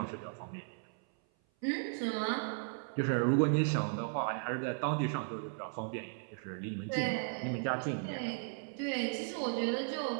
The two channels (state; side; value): silent; left; 54 dB below the other